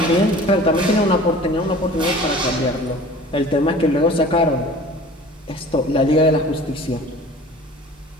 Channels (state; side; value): normal; both; correlation 0.43